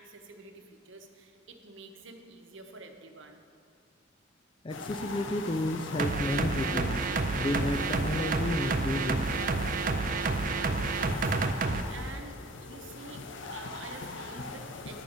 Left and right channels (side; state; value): both; normal; correlation 0.52